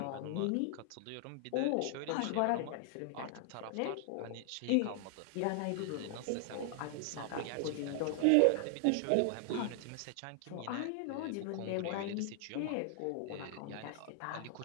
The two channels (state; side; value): different; both; correlation 0.00